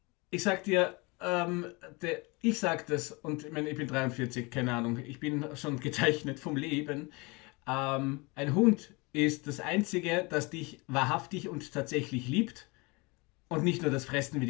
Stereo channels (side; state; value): right; quieter; 27.0 dB